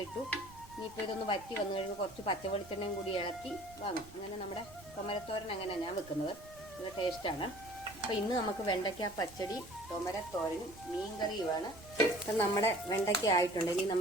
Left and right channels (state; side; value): noise; right; rumble, 20 dB below the sound